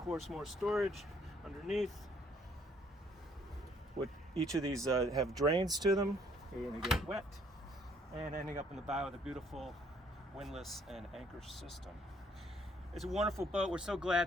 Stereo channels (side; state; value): both; normal; correlation 0.64